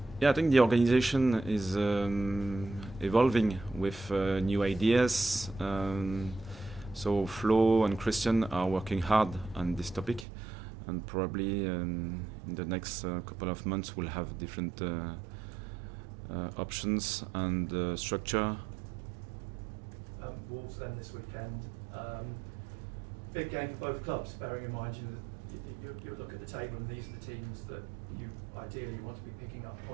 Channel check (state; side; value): drops out; left; at 10.2 s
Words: Yeah, I think the organization is evolving with new ideas. So Flo and Christian are working hard on this topic, and probably in the next couple of months we'll have different options and structure. Wolves then this weekend. Big game for both clubs, bearing in mind you look at the table and these are the teams that you ideally want to be picking up